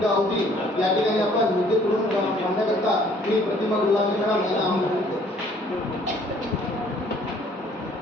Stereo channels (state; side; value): normal; both; correlation 0.59